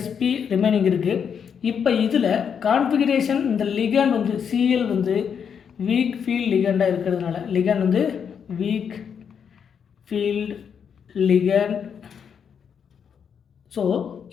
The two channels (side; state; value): right; quieter; 7.3 dB